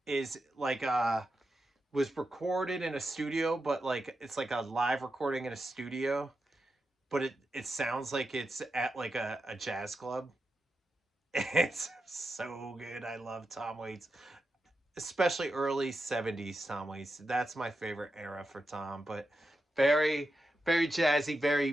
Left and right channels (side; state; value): both; normal; correlation 0.88